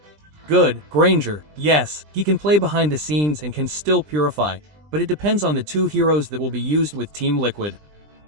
Good, Granger, yes. He can play behind the scenes and can still purify, but it depends on the 2 heroes that will be used with Team Liquid.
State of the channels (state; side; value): late; left; 20 ms